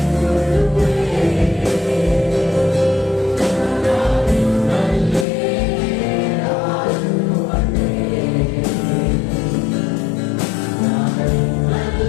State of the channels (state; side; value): drops out; right; at 5.2 s